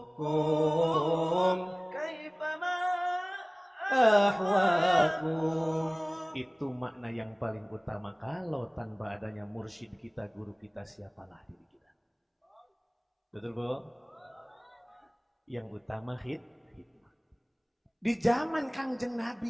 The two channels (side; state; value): both; identical; correlation 1.00